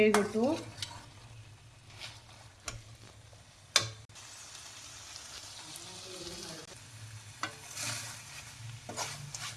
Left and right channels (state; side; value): identical; both; correlation 1.00